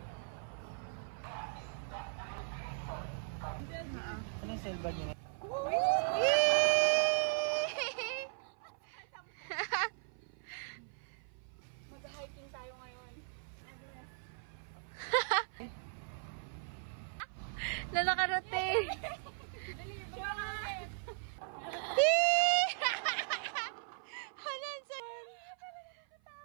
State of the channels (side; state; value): left; silent; 52 dB below the other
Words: Ano yung silver niya? Mag-hiking tayo ngayon. Lalakarote.